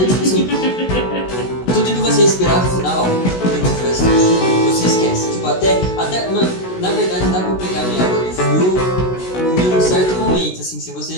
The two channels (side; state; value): right; late; 16 ms